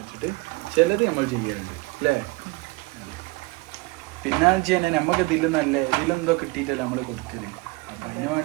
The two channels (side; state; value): left; quieter; 25.0 dB